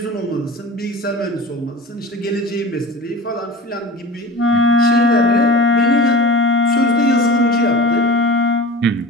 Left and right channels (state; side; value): normal; both; correlation 0.35